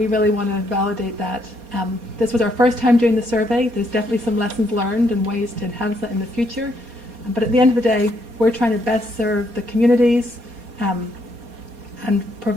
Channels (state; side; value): late; left; 4.2 ms